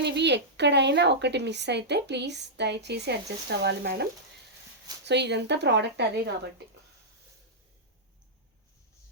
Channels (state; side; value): normal; both; correlation -0.12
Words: ఎక్కడైనా ఒకటి మిస్ అయితే ప్లీజ్ దయచేసి అడ్జస్ట్ అవ్వాలి మేడం. సో ఇదంతా ప్రోడక్ట్ అదే కాబట్టి.